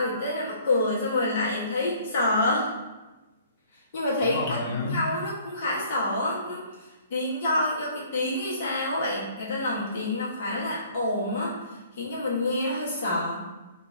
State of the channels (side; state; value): both; inverted; correlation -0.56